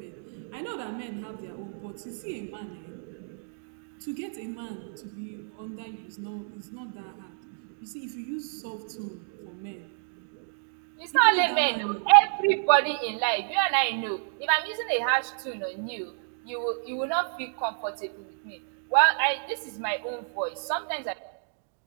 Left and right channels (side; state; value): left; silent; digital silence